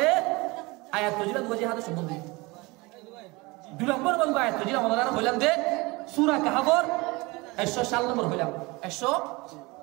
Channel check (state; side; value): quieter; left; 24.3 dB